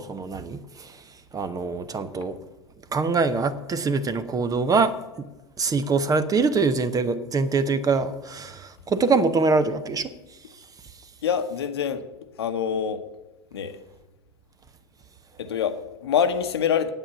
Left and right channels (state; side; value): normal; both; correlation 0.37